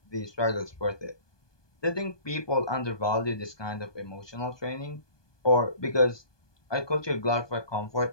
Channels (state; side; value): late; right; 1.2 ms